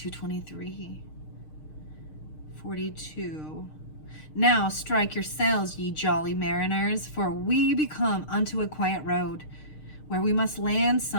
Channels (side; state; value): right; late; 6.5 ms